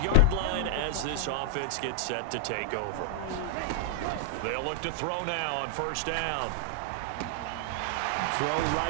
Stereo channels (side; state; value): both; different; correlation -0.01